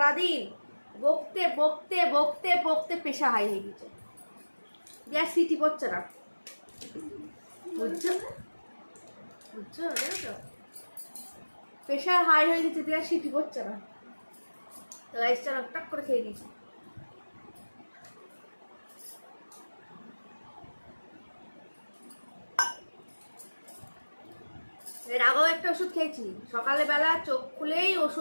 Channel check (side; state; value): both; inverted; correlation -1.00